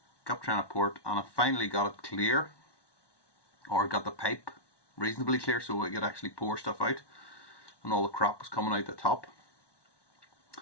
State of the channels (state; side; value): late; right; 1.1 ms